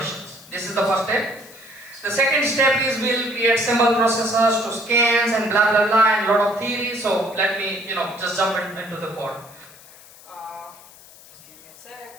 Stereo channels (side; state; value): left; noise; hiss, 22 dB below the sound